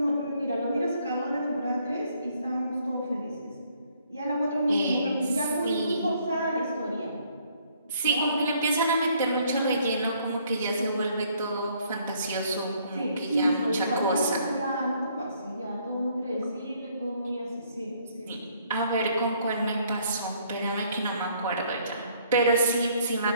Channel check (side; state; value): both; inverted; correlation -0.65